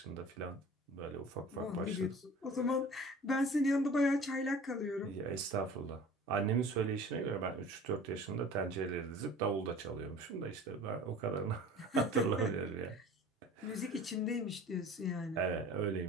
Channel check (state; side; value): normal; both; correlation 0.42